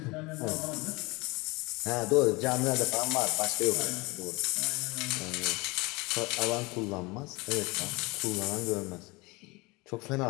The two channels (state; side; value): quieter; right; 24.7 dB